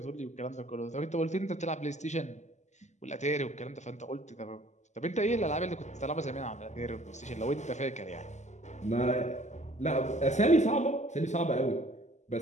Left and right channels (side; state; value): right; late; 0.34 ms